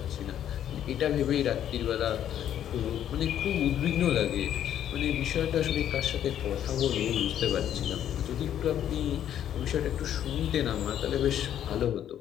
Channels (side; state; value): right; quieter; 10.5 dB